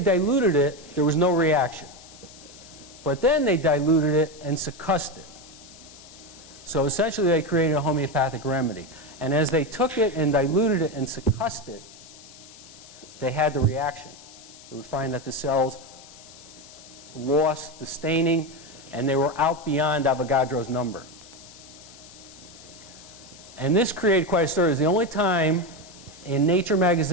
it, there was no reaction. But then they diluted it and succussed it. So essentially they created a homeopathic remedy. And as they took it and diluted it and succussed it, they had the reaction. They would find that the cells lost the staining and they were out beyond Avogadro's number. And this created quite a story. It was the only time in Nature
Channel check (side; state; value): left; noise; hiss, 20 dB below the sound